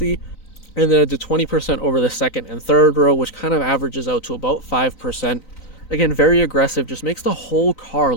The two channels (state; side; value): late; right; 3.9 ms